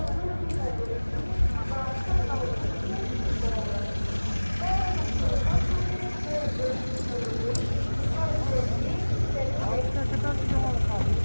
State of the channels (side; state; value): both; inverted; correlation -1.00